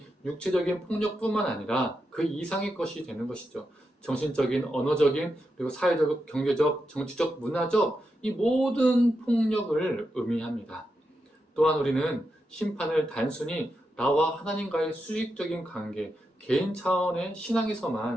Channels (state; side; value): normal; both; correlation 0.86